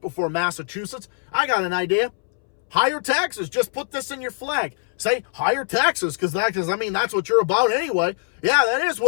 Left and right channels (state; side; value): silent; right; 63 dB below the other